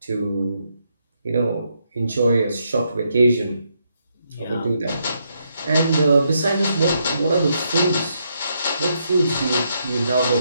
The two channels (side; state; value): both; inverted; correlation -0.78